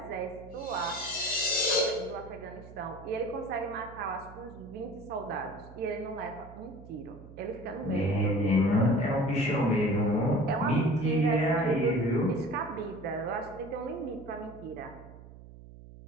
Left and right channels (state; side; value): noise; right; hum, 17 dB below the sound